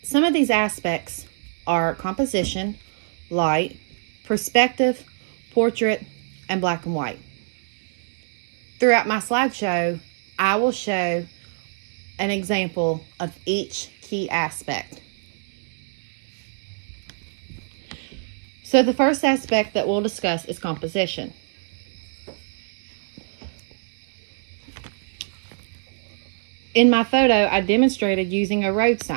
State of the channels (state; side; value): silent; left; digital silence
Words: some of these aspects are composition, light, perspective, portrait, and black and white. Throughout my slideshow, I will show an example of each key aspect. So the first aspect that we'll discuss is composition. In my photo, I demonstrated using a road